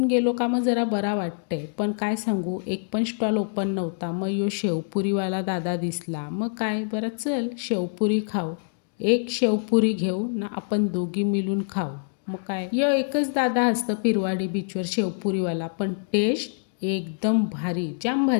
गेलो का मग जरा बरा वाटतंय. पण काय सांगू एक पण स्टॉल ओपन नव्हता. मग यो शेवपुरीवाला दादा दिसला. मग काय बरं चल शेवपुरी खाऊ. एक शेवपुरी घेऊ ना आपण दोघी मिळून खाऊ. मग काय यो एकच दादा असतं पिरवाडी बीचवर शेवपुरीवाला, पण टेस्ट एकदम भारी, जाम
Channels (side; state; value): right; silent; digital silence